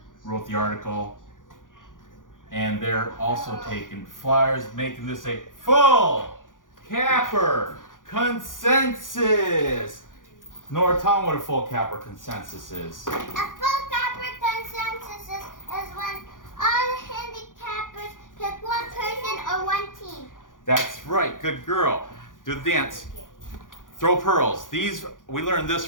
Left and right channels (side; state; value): right; late; 0.88 ms